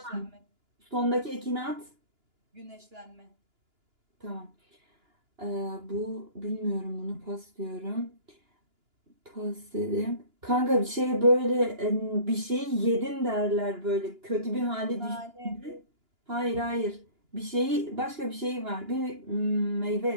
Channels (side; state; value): left; late; 2.9 ms